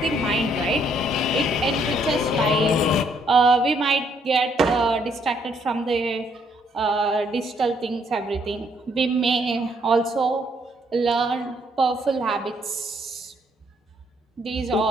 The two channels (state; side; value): normal; both; correlation 0.69